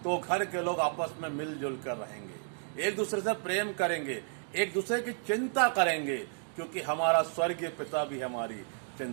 तो घर के लोग आपस में मिलजुल कर रहेंगे, एक दूसरे से प्रेम करेंगे, एक दूसरे की चिंता करेंगे, क्योंकि हमारा स्वर्गीय पिता भी हमारी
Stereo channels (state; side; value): silent; left; 55 dB below the other